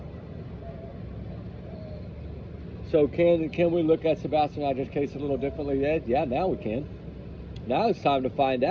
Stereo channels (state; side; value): identical; both; correlation 1.00